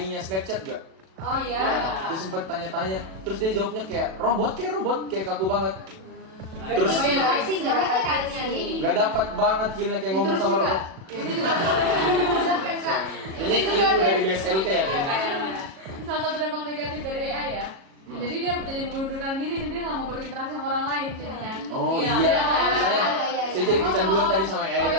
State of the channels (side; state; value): left; late; 37 ms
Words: Snapchat gak? Oh iya. Dia sempet tanya-tanya, terus dia jawabnya kayak robot, kayak kaku banget. Terus Oh iya, sih nggak dapat kayaknya nih. nggak dapat banget feelnya kayak ngomong sama robot. Itu juga. Kak. Ini ilmu dari BSLT ya kayaknya. Salah satu dampak negatif dari AI ya. Jadi dia jadi mengundurkan diri dan dia nggak mau berinteraksi sama orang lain jadinya. Oh Iya. iya, Iya. saya jadi kecanduan tadi sama AI Oh, iya,